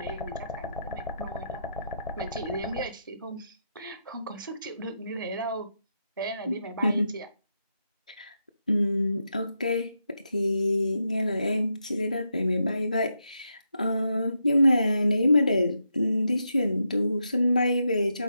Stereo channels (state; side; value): inverted; both; correlation -0.84